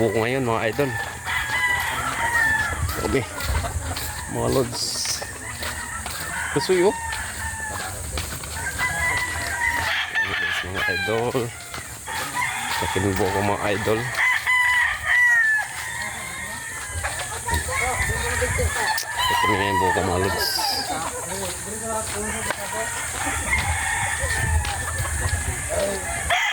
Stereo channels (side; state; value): both; identical; correlation 1.00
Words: ngayon mga idol. Grabe. Mga lods. Kasuyo. Grabe guys mga idol. Akit kami buko mga idol. Ito na yung buko mga lods.